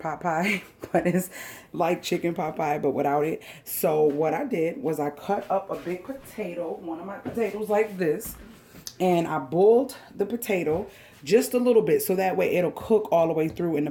pie, but it's like chicken pot pie, but without it. So what I did was I cut up a big potato, one of my potatoes like this, and I boiled the potato just a little bit so that way it'll cook all the way through in the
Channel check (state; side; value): identical; both; correlation 1.00